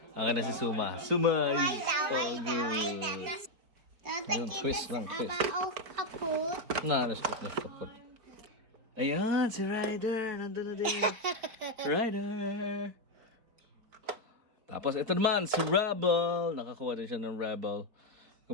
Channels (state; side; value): late; left; 4.4 ms